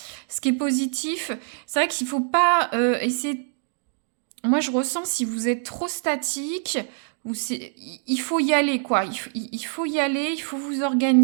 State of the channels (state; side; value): silent; left; 58 dB below the other